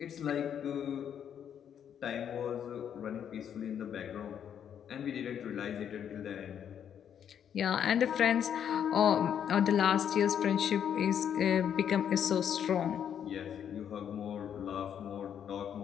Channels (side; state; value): right; quieter; 8.8 dB